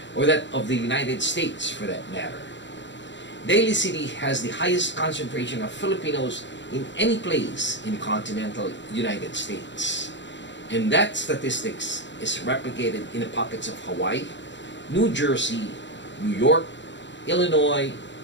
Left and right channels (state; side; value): late; right; 0.53 ms